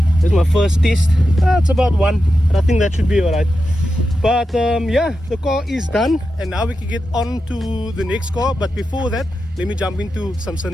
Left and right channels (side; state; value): both; normal; correlation 0.89